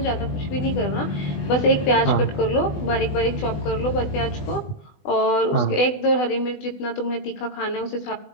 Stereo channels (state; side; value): late; right; 20 ms